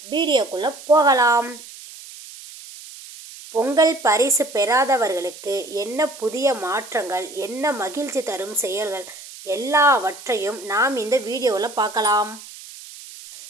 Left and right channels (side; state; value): right; noise; hiss, 16 dB below the sound